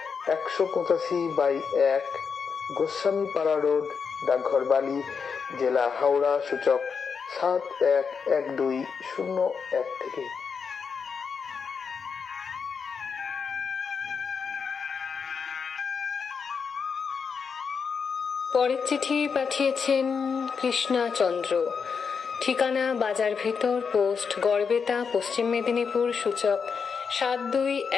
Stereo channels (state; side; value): quieter; right; 5.9 dB